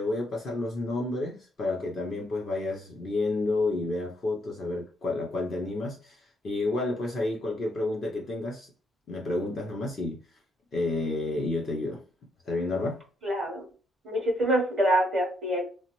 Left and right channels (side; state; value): both; normal; correlation 0.74